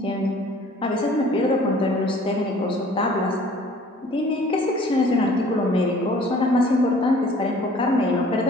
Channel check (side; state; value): both; normal; correlation 0.52